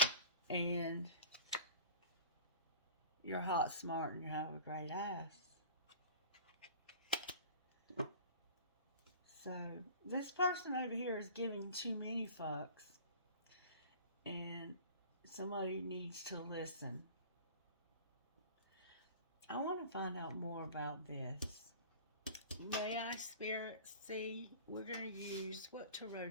and you're hot, smart, and you have a great ass. So, this person over here is giving too many fucks. And somebody needs to listen. I want to find out more about this. May I, Spirit, see? We're going to use, what tarot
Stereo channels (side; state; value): both; inverted; correlation -0.42